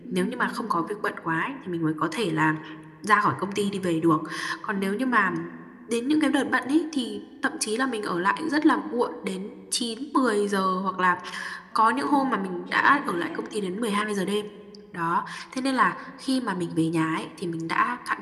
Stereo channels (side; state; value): both; identical; correlation 1.00